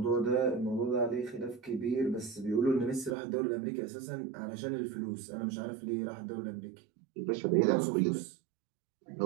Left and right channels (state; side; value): drops out; left; at 3.2 s